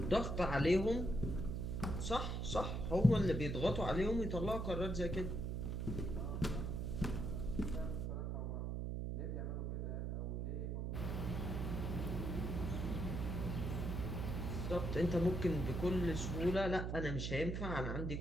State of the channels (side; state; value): right; noise; hum, 2 dB below the sound